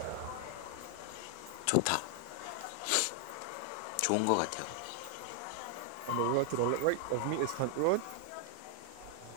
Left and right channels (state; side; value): different; both; correlation 0.00